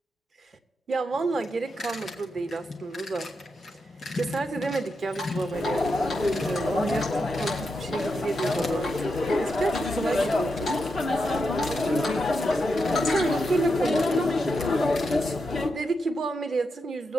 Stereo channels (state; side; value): normal; both; correlation 0.85